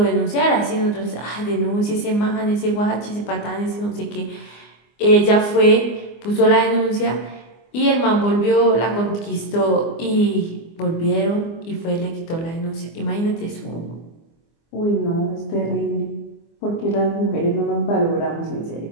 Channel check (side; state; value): right; late; 24 ms